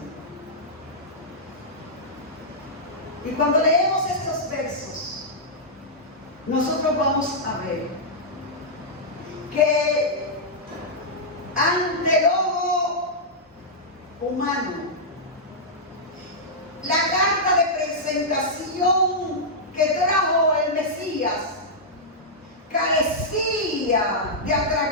Y cuando leemos estos versos, nosotros vamos a ver que ante el ojo humano, la carta de presentación que trajo el Mesías carecía de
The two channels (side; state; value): both; normal; correlation -0.09